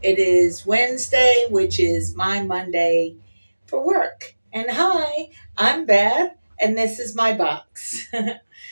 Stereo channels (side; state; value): both; inverted; correlation -1.00